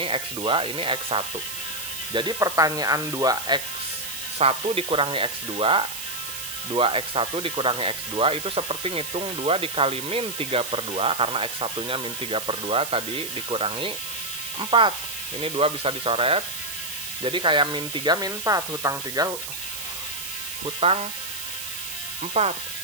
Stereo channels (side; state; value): right; noise; hiss, 7 dB below the sound